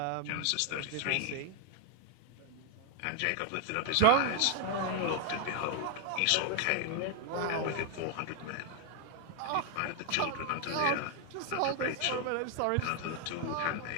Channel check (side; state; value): both; different; correlation 0.01